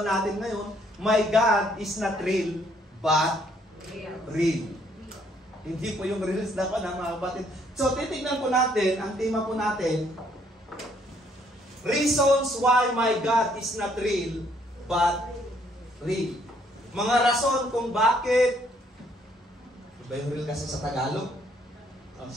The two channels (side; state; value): both; normal; correlation 0.67